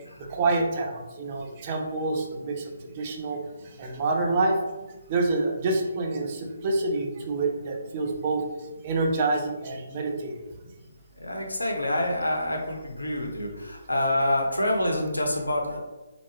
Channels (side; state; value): both; inverted; correlation -0.74